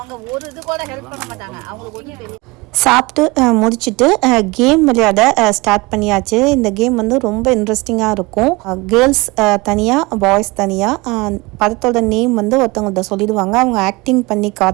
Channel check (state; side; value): quieter; left; 24.0 dB